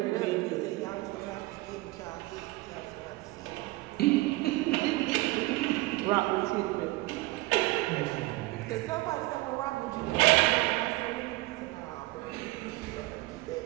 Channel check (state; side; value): quieter; left; 20.6 dB